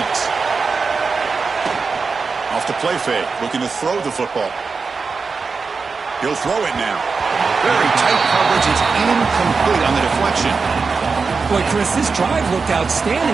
Off the play fake, looking to throw the football. He'll throw it now. Very tight coverage. It's incomplete on the deflection. Boy, Chris, this drive looked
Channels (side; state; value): left; quieter; 4.7 dB